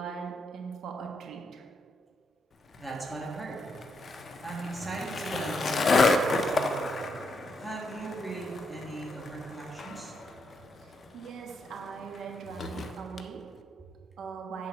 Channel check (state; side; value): normal; both; correlation 0.79